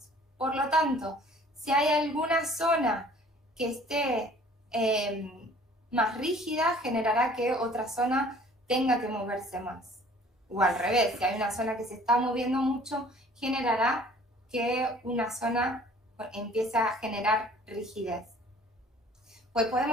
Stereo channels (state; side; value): normal; both; correlation 0.53